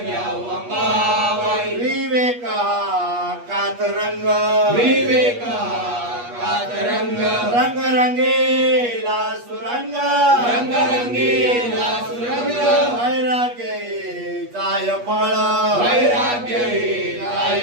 घ्यावा मामाई विवेक हा कातरंग विवेका कातरंग रंगरंगेला सुरंग रंगरंगीला सुरंग वैराग्य जाय फळ वैराग्य काय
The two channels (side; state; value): left; late; 8.4 ms